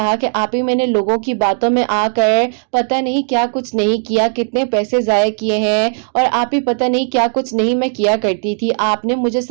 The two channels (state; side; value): silent; left; 58 dB below the other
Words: कि आप ही मैंने लोगों की बातों में आकर पता नहीं क्या कुछ नहीं किया, कितने पैसे जाया किए हैं और आप ही पता नहीं क्या कुछ नहीं मैं किया करती थी। आपने मुझे